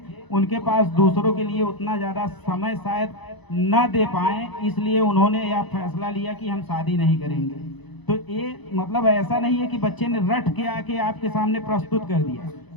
उनके पास दूसरों के लिए उतना ज़्यादा समय शायद न दे पाए, इसलिए उन्होंने यह फैसला लिया कि हम शादी नहीं करेंगे। तो ये मतलब ऐसा नहीं है कि बच्चे ने रट के आके आपके सामने प्रस्तुत कर दिया,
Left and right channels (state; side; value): late; right; 1.0 ms